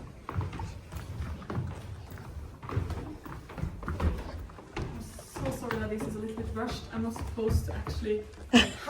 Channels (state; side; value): identical; both; correlation 1.00